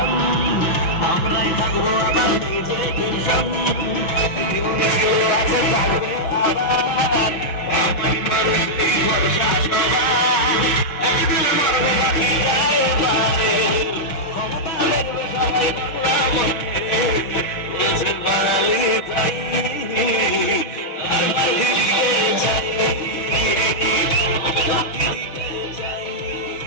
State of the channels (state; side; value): late; right; 6.0 ms